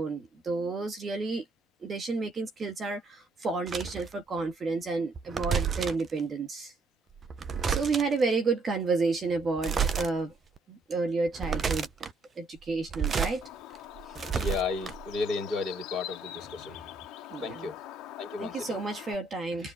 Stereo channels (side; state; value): left; quieter; 3.2 dB